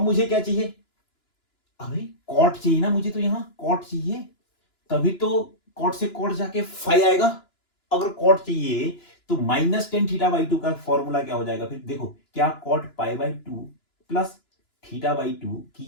मुझे क्या चाहिए, अभी कॉट चाहिए ना मुझे, तो यहां कॉट चाहिए, तभी तो कॉट से कॉट जाके 5 आएगा। अगर कॉट चाहिए तो -10 थीटा बाई 2 का फॉर्मूला क्या हो जाएगा फिर, देखो क्या cot pi by 2 plus theta by 2 की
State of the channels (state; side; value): late; right; 2.9 ms